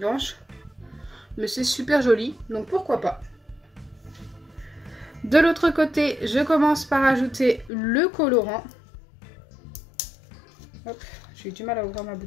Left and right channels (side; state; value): right; drops out; at 7.7 s